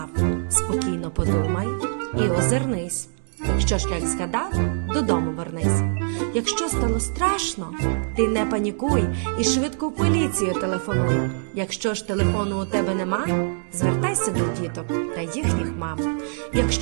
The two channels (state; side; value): silent; left; 61 dB below the other